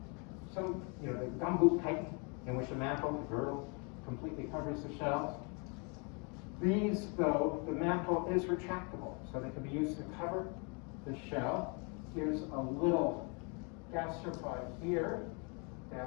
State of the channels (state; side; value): quieter; right; 34.3 dB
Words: some, the gumboot chitin, in which the mantle, the girdle, completely covers the shells. These, though, the mantle is retractable, so they can be used to cover the shell. Here's a little gastropod here